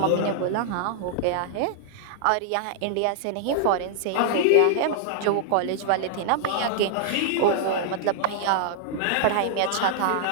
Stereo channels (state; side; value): different; both; correlation -0.01